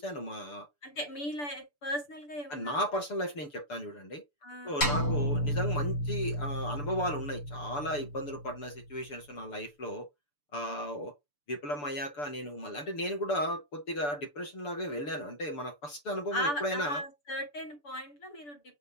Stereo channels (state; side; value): late; right; 6.9 ms